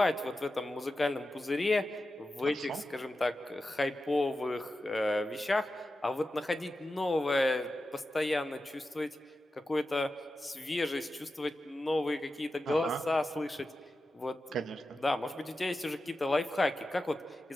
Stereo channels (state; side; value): normal; both; correlation 0.92